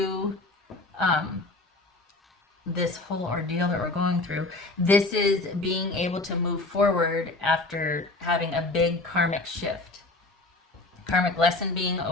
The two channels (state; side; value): quieter; right; 3.0 dB